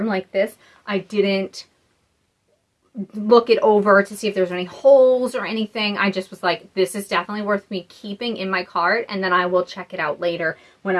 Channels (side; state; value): both; identical; correlation 1.00